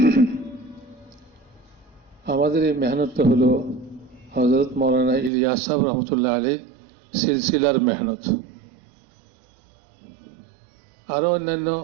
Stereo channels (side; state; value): left; drops out; at 5.3 s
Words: আমাদের এই মেহনতটা হলো হযরত মাওলানা ইলিয়াস সাহেব রহমতুল্লাহ আলাইহি সিলসিলার মেহনত আরো অন্যান্য